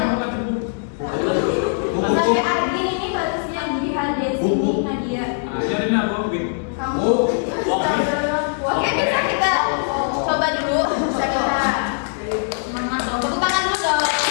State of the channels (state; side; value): silent; right; digital silence